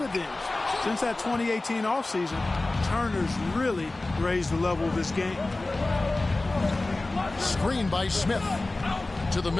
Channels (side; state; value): right; quieter; 3.0 dB